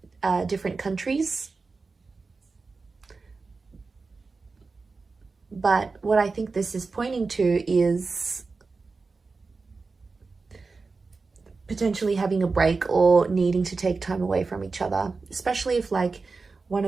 different countries. But what I think this is pointing to is potentially having a break or needing to take time away from each other, especially if like one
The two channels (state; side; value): quieter; left; 4.1 dB